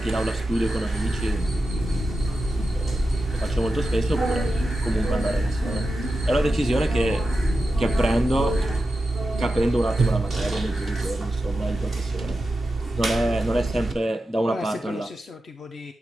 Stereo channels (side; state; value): both; normal; correlation 0.91